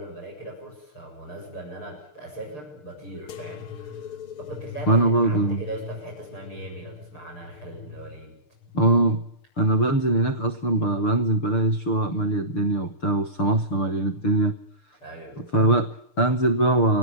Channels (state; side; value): late; right; 6.7 ms